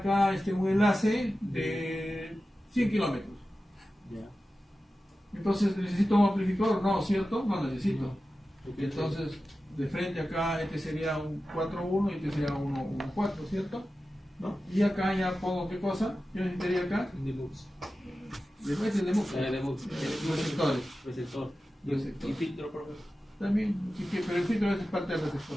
un enlace de 100 kilómetros. Entonces, ¿necesito un amplificador? No, ¿cierto? No necesito. Entonces, de frente acá, este sería un 4.1 y este sería un 1.4, ¿cierto? ¿No? Y acá ya pongo, ¿qué cosa? ¿Qué necesitaría acá? Demux. Receptores. Receptor. Receptor. Y filtro, por favor. También, sí, pero el filtro es parte del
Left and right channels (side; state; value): both; normal; correlation 0.94